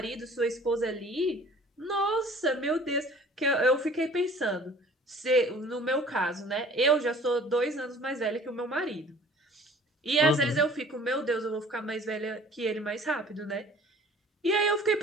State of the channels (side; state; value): both; normal; correlation 0.49